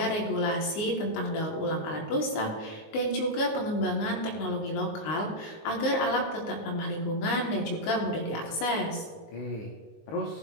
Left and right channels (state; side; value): late; right; 19 ms